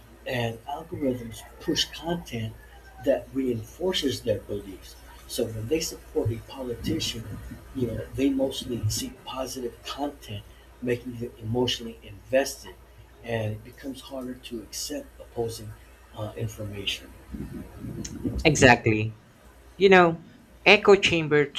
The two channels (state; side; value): identical; both; correlation 1.00